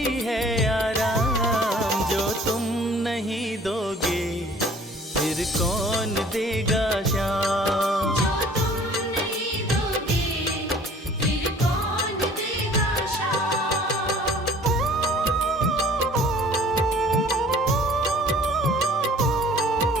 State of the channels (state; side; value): normal; both; correlation 0.52